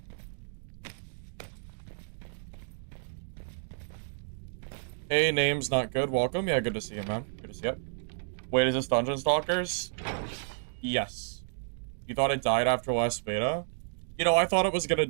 Hey, name's not good. Welcome. Yeah, good to see you, man. Good to see you. Wait, is this Dungeon Stalkers? Yes. You thought it died after last beta? You know, I thought it was gonna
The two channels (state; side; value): silent; left; digital silence